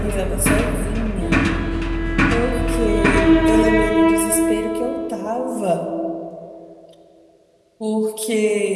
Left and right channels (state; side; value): identical; both; correlation 1.00